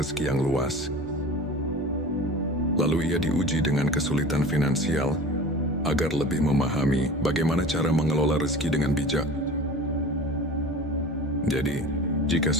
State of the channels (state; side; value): normal; both; correlation 0.37